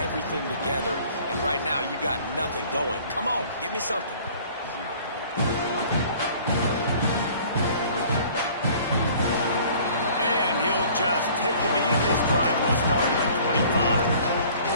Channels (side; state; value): both; inverted; correlation -0.51